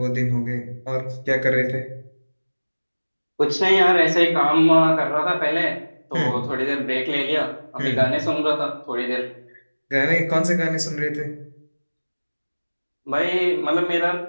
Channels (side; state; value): both; inverted; correlation -1.00